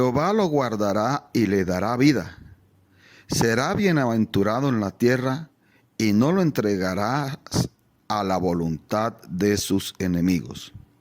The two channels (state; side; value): identical; both; correlation 1.00